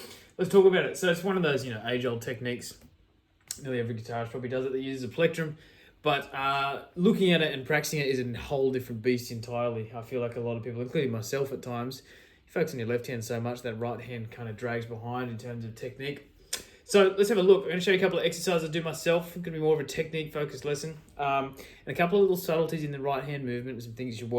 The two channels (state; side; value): identical; both; correlation 1.00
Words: Let's talk about it. So it's one of those, age-old techniques. Nearly every guitarist probably does it that uses a plectrum. But looking at it and practicing it is a whole different beast entirely. I feel like a lot of people, including myself at times, you focus on your left hand so much that right hand kind of drags behind in terms of technique. So let's have a look. I'm going to show you a couple of exercises I do myself. It's going to be more of a technique focused lesson. And a couple of little subtleties in the right hand movement and some things you should